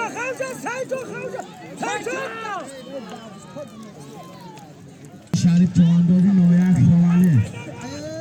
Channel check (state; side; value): identical; both; correlation 1.00